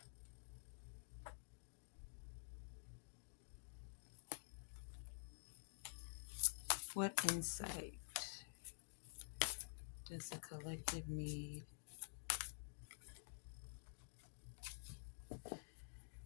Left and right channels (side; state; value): right; silent; digital silence